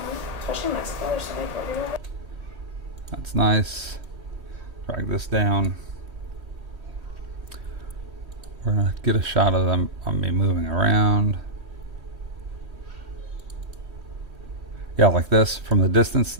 That's nice. Drag this down. We're gonna get a shot of them on me moving around. Yeah, like this from the distance.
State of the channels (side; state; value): left; late; 1.8 ms